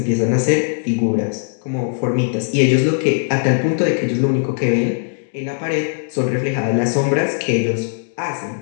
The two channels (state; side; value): silent; right; 67 dB below the other